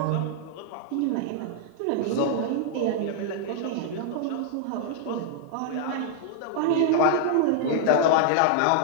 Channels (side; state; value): both; different; correlation -0.01